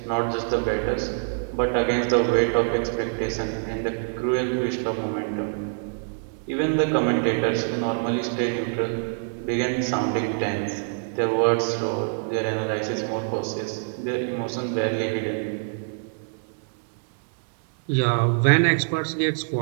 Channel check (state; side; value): silent; left; digital silence